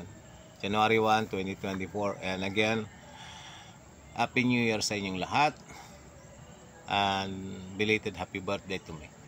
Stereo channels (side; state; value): both; identical; correlation 1.00